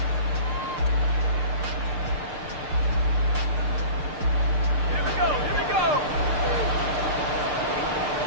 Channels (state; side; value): late; left; 6.6 ms